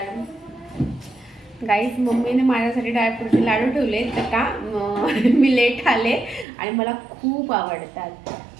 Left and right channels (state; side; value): drops out; left; at 6.5 s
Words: गाईज मम्मीने माझ्यासाठी ड्रायफ्रूटचे लाडू ठेवले तर का मी लेट आले आणि मला खूप आवडतात.